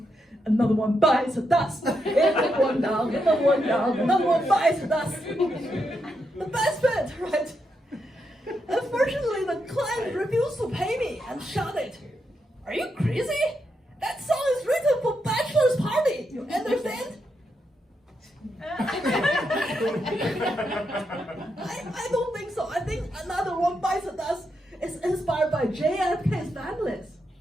Another one bites the dust. Another one down, another one down, another one bites the dust. The best bit, right? Unfortunately, the client refused to pay me and shouted, "Are you crazy? That song is written for bachelor's party, you understand?" I don't think so. I think Another One Bites the Dust is inspired by JFK's families.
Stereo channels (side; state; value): both; normal; correlation 0.82